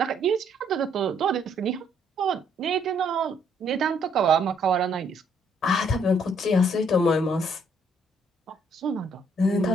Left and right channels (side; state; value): both; normal; correlation 0.68